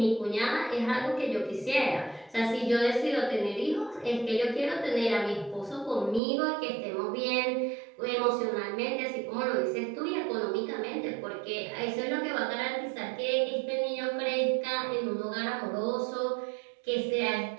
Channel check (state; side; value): drops out; left; at 6.2 s